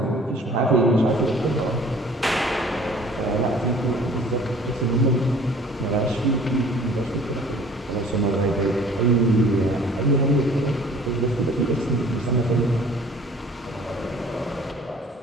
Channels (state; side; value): normal; both; correlation 0.50